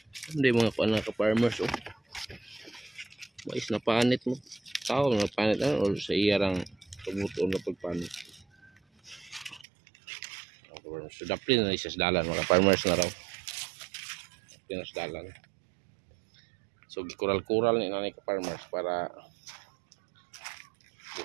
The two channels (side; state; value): left; drops out; at 9.7 s